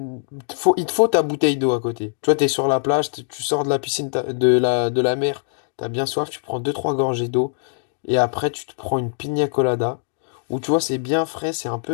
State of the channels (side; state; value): right; silent; digital silence